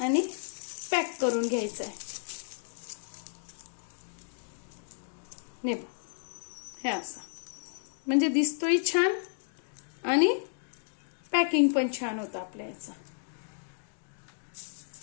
पॅक करून घ्यायचं आहे. हे असं म्हणजे दिसतोय छान आणि पॅकिंग पण छान होतं आपल्या याचं.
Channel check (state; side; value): silent; right; digital silence